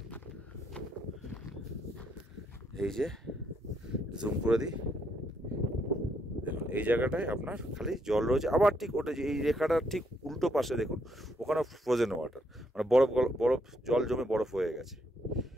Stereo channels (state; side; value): normal; both; correlation 0.74